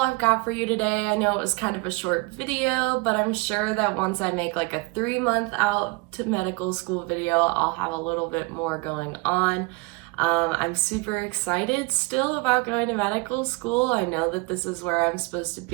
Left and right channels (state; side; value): quieter; left; 26.7 dB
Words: I've got for you today. I know it was kind of a short video, but I'm sure that once I make like a 3-month out to medical school video, I'll have a little bit more going on. I'm super excited still about going to medical school. I know that this is where I'm supposed to